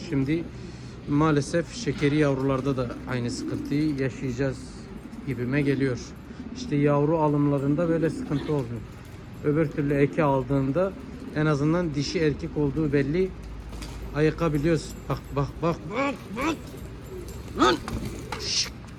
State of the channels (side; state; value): both; identical; correlation 1.00